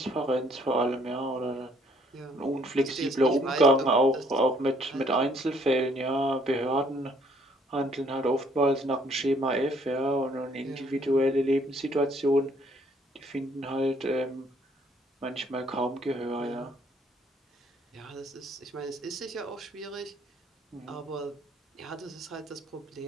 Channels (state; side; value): normal; both; correlation 0.63